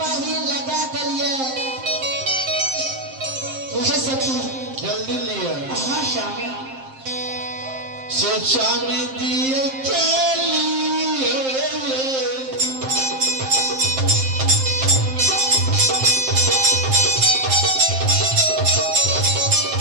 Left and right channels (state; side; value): late; left; 7.6 ms